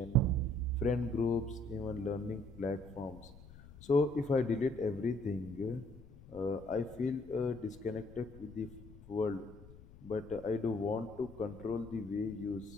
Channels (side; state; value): left; noise; rumble, 18 dB below the sound